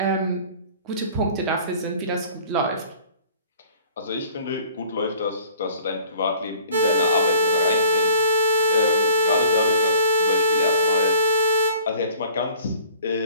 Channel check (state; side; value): inverted; both; correlation -0.50